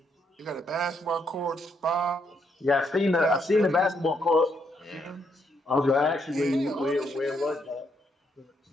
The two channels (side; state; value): both; normal; correlation 0.75